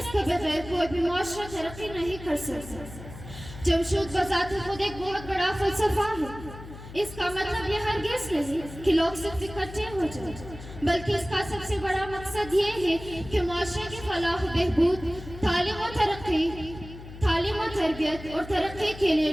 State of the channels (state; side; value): noise; left; hum, 14 dB below the sound